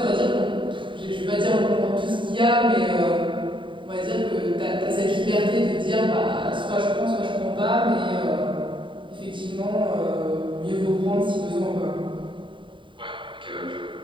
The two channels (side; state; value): left; late; 0.24 ms